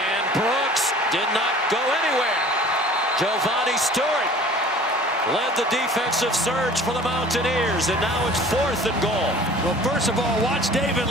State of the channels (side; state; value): both; normal; correlation 0.46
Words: Brooks did not go anywhere. Giovanni Stewart led the defensive surge for the Mountaineers, and now it's 4th and goal. Well, first of all, watch David